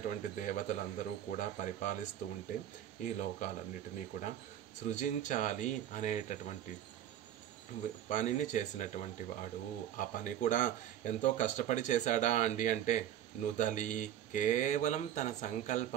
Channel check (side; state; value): left; quieter; 11.1 dB